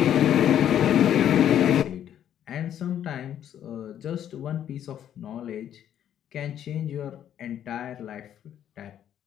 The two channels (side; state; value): right; quieter; 10.3 dB